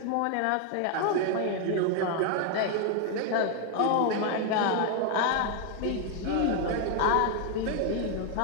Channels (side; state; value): both; different; correlation 0.01